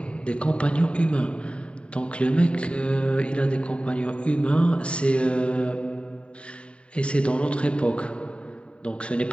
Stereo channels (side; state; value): right; late; 0.058 ms